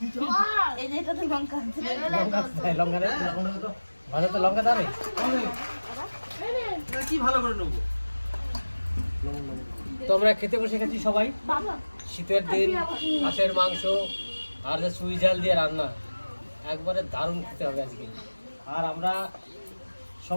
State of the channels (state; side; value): inverted; both; correlation -1.00